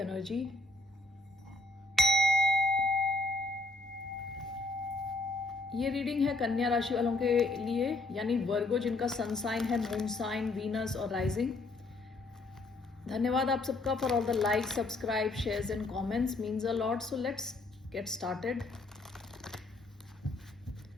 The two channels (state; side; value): quieter; right; 3.0 dB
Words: ये रीडिंग है कन्या राशि वालों के लिए, यानी वर्गो जिनका सन साइन है मून साइन, वीनस और राइजिंग। धन्यवाद आप सबका for all the like, subscribe, shares and comments, means a lot. So let's get started.